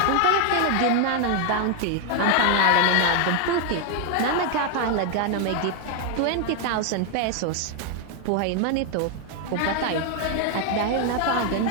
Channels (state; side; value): different; both; correlation 0.00